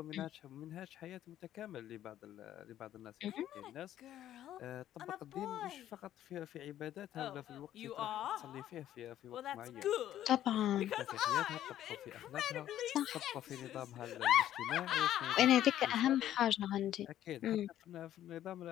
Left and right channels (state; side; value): quieter; right; 12.1 dB